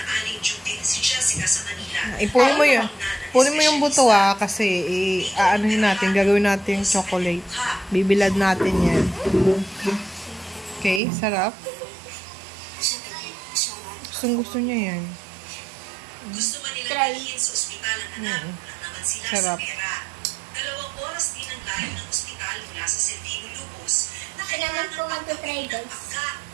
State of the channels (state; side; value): drops out; left; at 11.0 s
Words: Ipunin mo yun. Punin mo yung buto, kasi aanuhin natin, gagawin natin yung chocolate. Bibilad natin yan. Okay, sarap. Gusto niya yan. Try. Sarap. Kailangan po mag-try, guys.